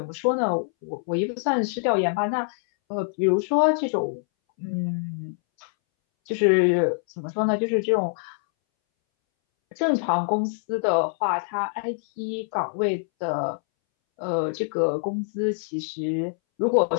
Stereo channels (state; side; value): silent; right; 62 dB below the other